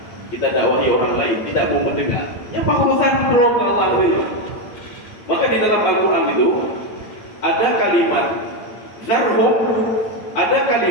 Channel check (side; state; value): right; late; 8.6 ms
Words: kita dakwahi orang lain, tidak mau mendengar. Yang urusan belum Allah itu. Maka di dalam Al-Quran itu ada kalimat zarhum, ada